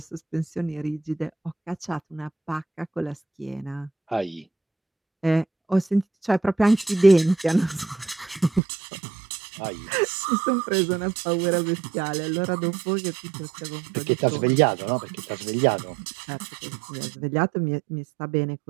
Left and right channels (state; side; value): drops out; left; at 8.6 s